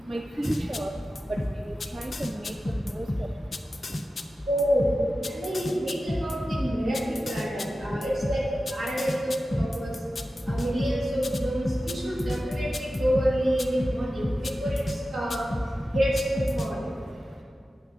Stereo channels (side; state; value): both; normal; correlation 0.93